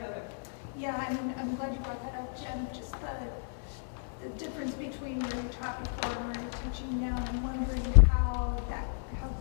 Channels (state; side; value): silent; right; digital silence